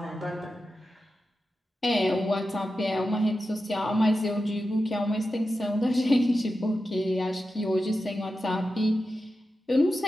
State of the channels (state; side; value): normal; both; correlation 0.91